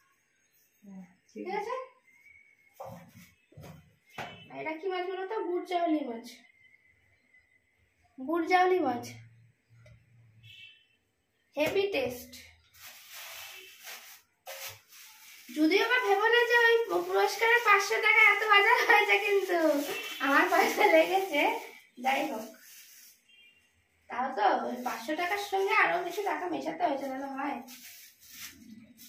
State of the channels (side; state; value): both; identical; correlation 1.00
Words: ঠিক আছে। এটা কি মাছ বলো তো? বুটজাউলি মাছ। বুটজাউলি মাছ, হেভি টেস্ট। যদিও বা ভেবো না যে ওই পুরস্কারের 500 টাকা এত বাজার হয়েছে, কিন্তু আমার পয়সা লেগেছে। যাই হোক, তাও তো ওই 500 টাকার সঙ্গে আরো কিছু টাকা মেশাতে হয়েছে, তাহলে হয়।